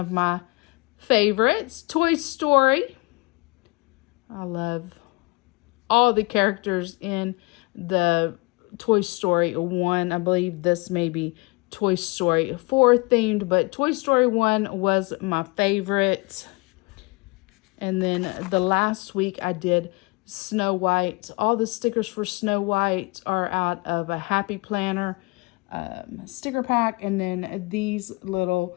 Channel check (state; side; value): quieter; right; 26.8 dB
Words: my favorites, Toy Story. I love all the characters in the Toy Story 1. I believe this may be Toy Story 4 themed, but Toy Story 1 was my favorite. And then the last week I did Snow White. All the stickers for Snow White are out of a Happy Planner sticker pack. And then these little